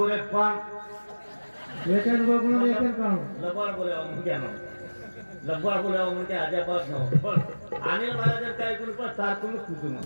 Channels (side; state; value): both; inverted; correlation -1.00